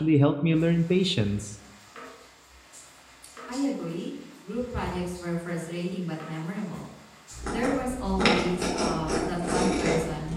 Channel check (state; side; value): identical; both; correlation 1.00